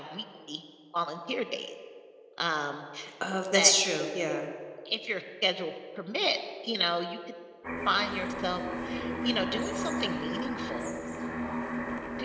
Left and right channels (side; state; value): both; identical; correlation 1.00